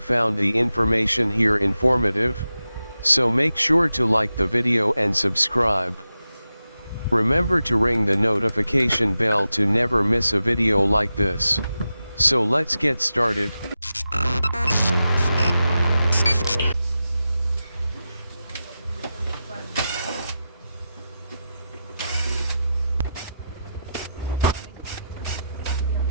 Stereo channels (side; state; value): both; inverted; correlation -0.91